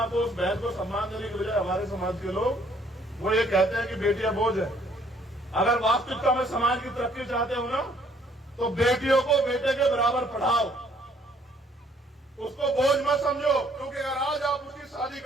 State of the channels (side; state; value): both; normal; correlation 0.63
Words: को, उस बहन को सम्मान देने के बजाय हमारे समाज के लोग वो ये कहते हैं कि बेटियां बोझ है। अगर वास्तविकता में समाज की तरक्की चाहते हो ना, तो बेटियों को बेटे के बराबर पढ़ाओ, उसको बोझ मत समझो। क्योंकि अगर आज आप उसकी शादी